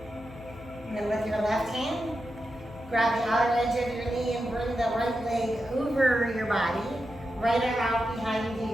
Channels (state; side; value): noise; left; hum, 18 dB below the sound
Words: And then with your left hand, grab the outer edge of your knee and bring the right leg over your body. Right arm out behind